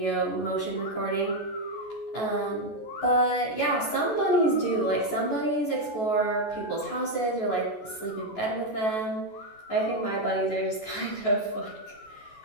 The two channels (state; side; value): late; right; 14 ms